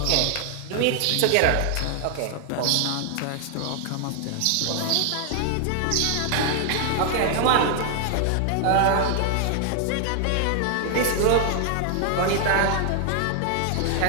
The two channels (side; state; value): both; different; correlation 0.00